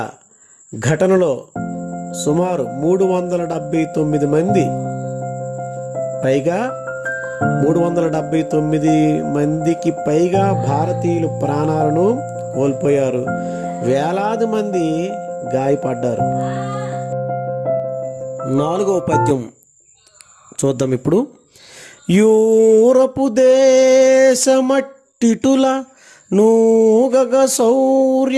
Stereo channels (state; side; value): identical; both; correlation 1.00